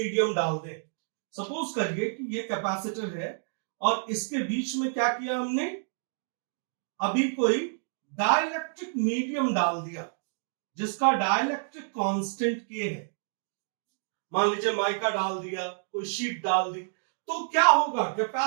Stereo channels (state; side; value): silent; left; digital silence